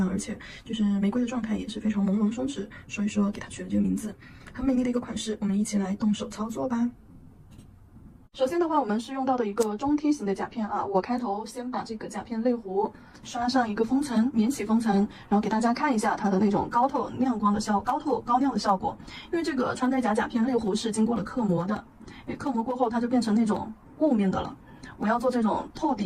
而且就是玫瑰的状态也是非常朦胧松弛，所以说给它取了这个名字，很美丽的一个款式。我们一起来动手操作吧。首先的话，我们是用到的一个中梯形的甲片啊。我开头先把这个甲片类弧刷上一个封层，免洗封层，然后给大家看一下它的那种高亮的效果。因为这个穿戴甲片类弧是经过了刻模的，刻模过后它就变成那种雾面的了。我要做这种透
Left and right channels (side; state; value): both; identical; correlation 1.00